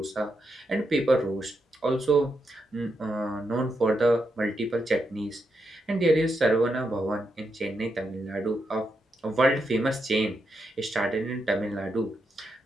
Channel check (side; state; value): both; normal; correlation 0.83